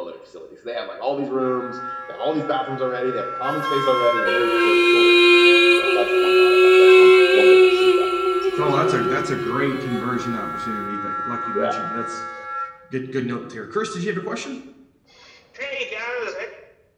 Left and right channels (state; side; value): identical; both; correlation 1.00